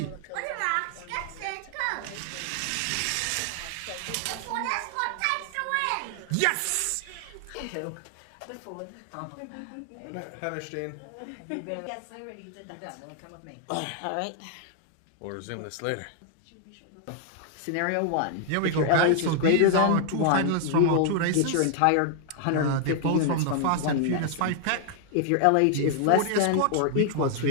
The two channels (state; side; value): different; both; correlation 0.00